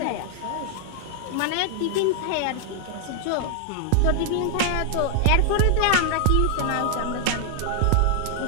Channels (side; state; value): both; different; correlation 0.00